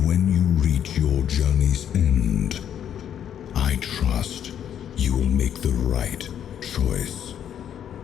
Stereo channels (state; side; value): quieter; right; 9.5 dB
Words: when you reach your journey's end, I trust you will make the right choice.